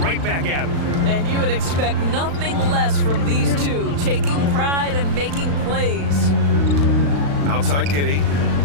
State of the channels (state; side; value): late; left; 36 ms